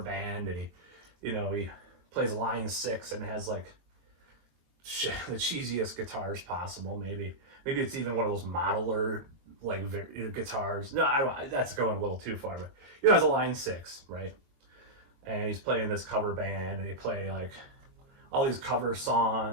band, and he plays Line 6 and has like shit, the cheesiest guitars possible. Maybe it's even one of those modeler like guitars. No, that's going a little too far, but it's a Line 6, right? And he's playing this cover band, and he play like all these cover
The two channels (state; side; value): late; left; 23 ms